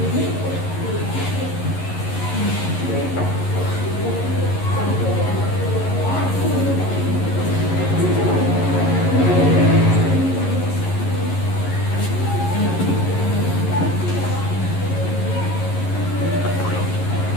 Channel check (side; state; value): right; late; 11 ms